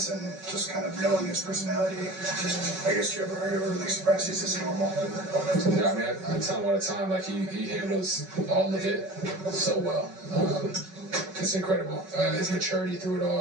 and just kind of knowing his personality? I guess are you ever like surprised he's this normal? Yeah, I tell him all the time, like he handles all of it so well. It's incredible. His maturity through it all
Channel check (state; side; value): late; left; 5.3 ms